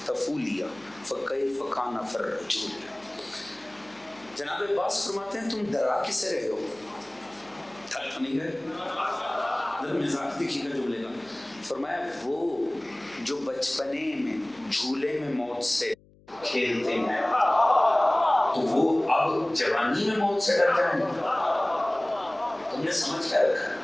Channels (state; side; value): noise; left; hum, 28 dB below the sound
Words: فکیف کان فی الرجول. جناب عباس فرماتے ہیں تم ڈرا کسے رہے ہو؟ تھک نہیں گئے؟ ذرا مزاج دیکھیے گا جملے کا. فرمایا وہ جو بچپنے میں جھولے میں موت سے کھیلتے ہیں تو وہ اب جوانی میں موت سے ڈر جائیں گے. تم نے سمجھ کیا رکھا؟